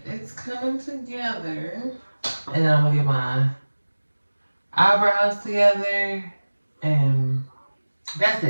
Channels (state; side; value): inverted; both; correlation -1.00